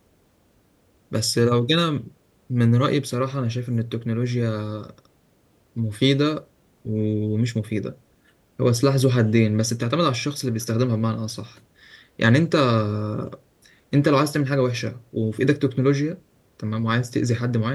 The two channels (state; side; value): identical; both; correlation 1.00